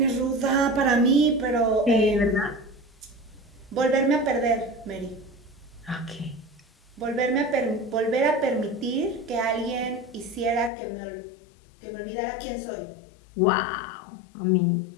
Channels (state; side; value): drops out; right; at 10.7 s